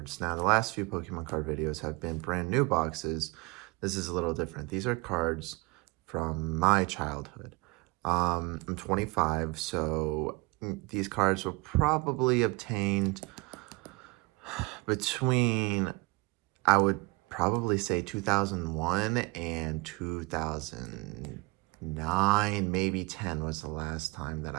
Now the last few Pokemon card videos have been brand new boxes. This is a little different. These are cards from my childhood. I'm 25, so these cards were probably obtained between, I would probably say 2001 and 2009, maybe 10 was the last time that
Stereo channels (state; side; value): quieter; left; 26.0 dB